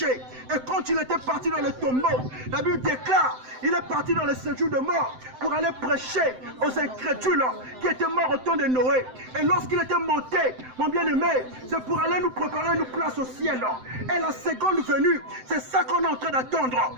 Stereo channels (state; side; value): late; left; 7.8 ms